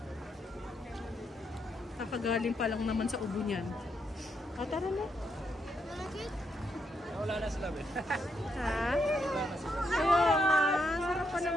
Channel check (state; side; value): normal; both; correlation 0.79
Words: Kakagaling pa lang naman sa ubo niyan. O, tara na. Wala na sila, be. Ha? Ayun na. Sarap pa